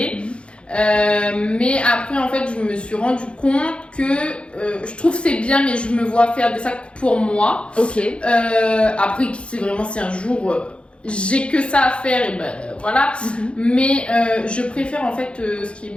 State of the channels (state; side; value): late; right; 0.058 ms